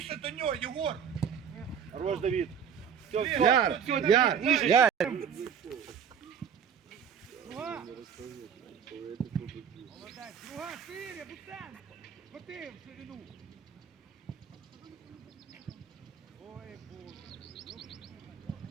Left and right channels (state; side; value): quieter; left; 7.7 dB